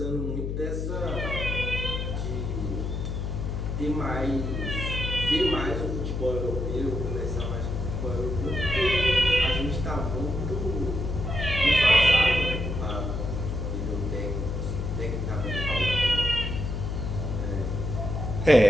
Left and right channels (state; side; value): noise; left; hum, 2 dB below the sound